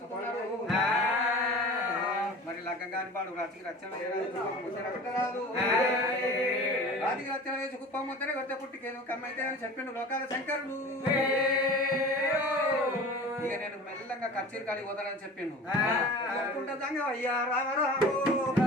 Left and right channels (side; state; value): both; normal; correlation 0.38